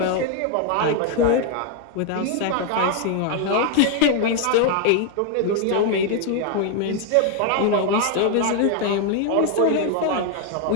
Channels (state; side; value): different; both; correlation 0.00